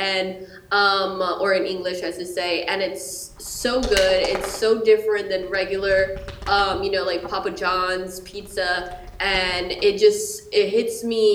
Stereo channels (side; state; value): both; identical; correlation 1.00